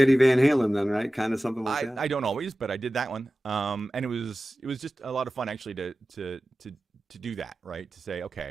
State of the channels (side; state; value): both; normal; correlation 0.95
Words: Van Halen then, right? Kind of something like that? I don't always, but I did that one. And it was just a lot of fun actually to do that, right? To say,